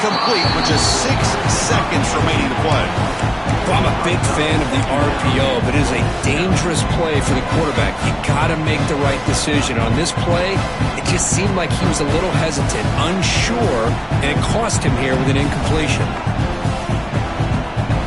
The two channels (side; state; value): both; identical; correlation 1.00